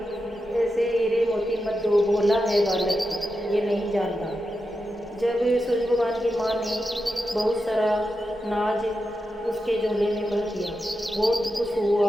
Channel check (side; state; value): both; normal; correlation 0.88